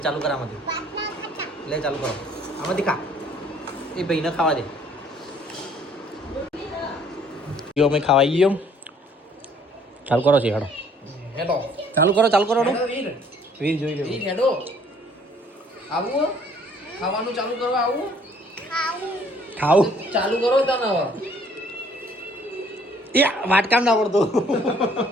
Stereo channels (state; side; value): normal; both; correlation 0.59